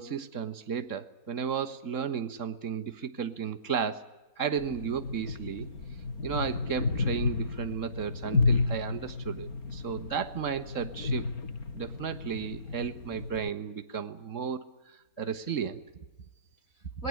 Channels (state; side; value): late; right; 3.7 ms